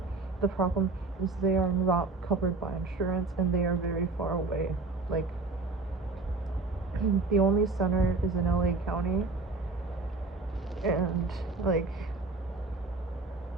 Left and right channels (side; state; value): left; quieter; 3.7 dB